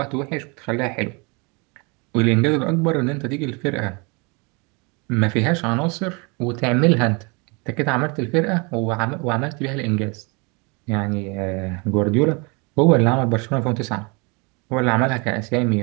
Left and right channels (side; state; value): left; quieter; 30.5 dB